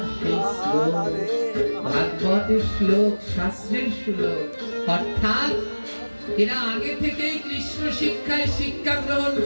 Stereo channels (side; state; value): both; inverted; correlation -1.00